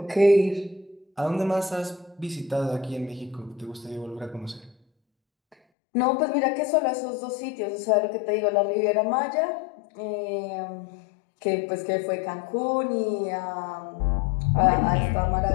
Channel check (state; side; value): drops out; right; at 5.6 s